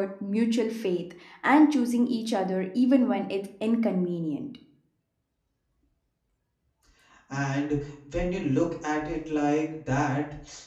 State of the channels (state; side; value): identical; both; correlation 1.00